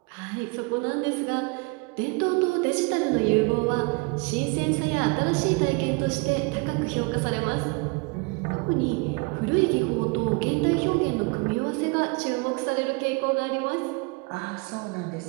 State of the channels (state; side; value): quieter; left; 29.3 dB